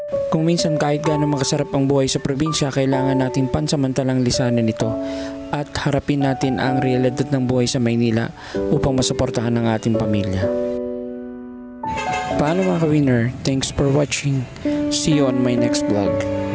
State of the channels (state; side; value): identical; both; correlation 1.00